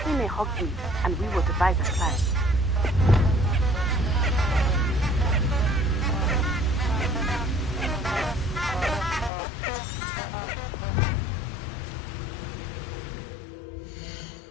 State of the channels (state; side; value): drops out; right; at 9.3 s